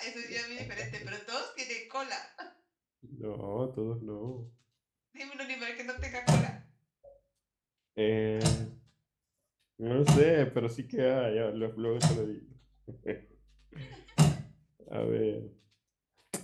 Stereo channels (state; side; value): identical; both; correlation 1.00